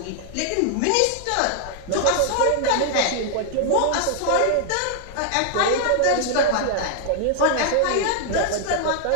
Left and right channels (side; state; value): both; different; correlation -0.01